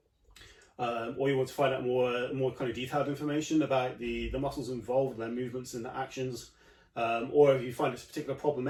or you want to find out more kind of detailed information about the muscles involved, their movements and their actions, or if you find it's a particular problem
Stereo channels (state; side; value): identical; both; correlation 1.00